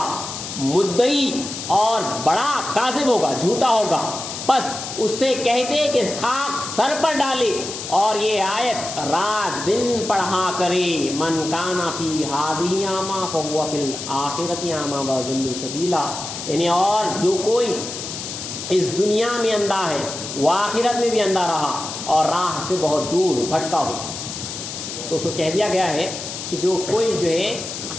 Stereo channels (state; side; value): noise; left; hiss, 7 dB below the sound